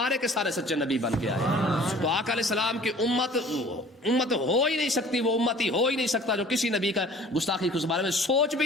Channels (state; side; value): normal; both; correlation 0.48